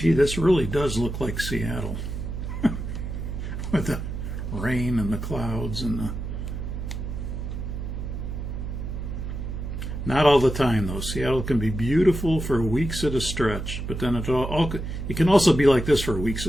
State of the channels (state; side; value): noise; right; hum, 5 dB below the sound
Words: Gee, this really does look like Seattle with the rain and the clouds and the... Not all the time, though. Seattle can be beautiful for weeks at a stretch, but then it can also be like this for weeks